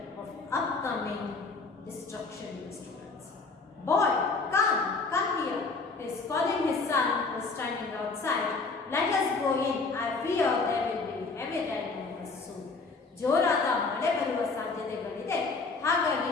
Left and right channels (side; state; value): right; quieter; 4.1 dB